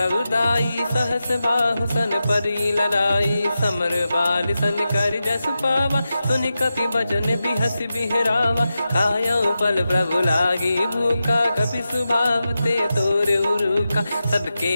सहस बाहु सन परी ललाई समर बाल सन कर जस पावा सुनि कपि भजन बिहस बिहरावा खायो पल प्रभु लागी भूखा कपि स्वभाव ते तोर उरुका सबके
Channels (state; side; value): inverted; both; correlation -0.91